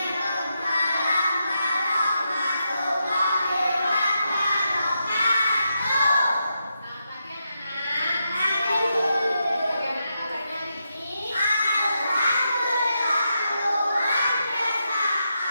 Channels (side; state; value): both; inverted; correlation -0.85